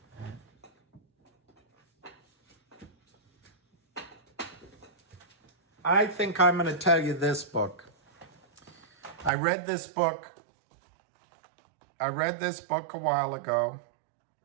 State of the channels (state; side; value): drops out; left; at 9.3 s